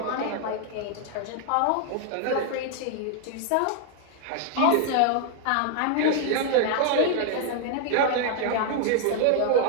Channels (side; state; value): both; different; correlation 0.00